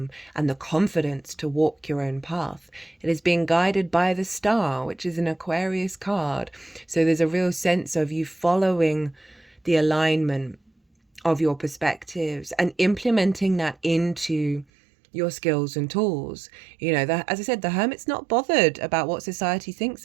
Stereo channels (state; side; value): drops out; left; at 14.7 s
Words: and the confidence to walk your own path. It is being guided by the star, which is an Aquarius card. So there's a real sense of you following the alignment of your perspectives and implementing that into your skills and tools. You know, as I said, the Hermit's not bothered about what society thinks